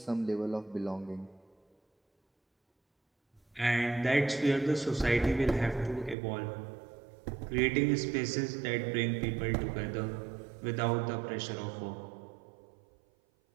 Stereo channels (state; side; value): drops out; left; at 6.2 s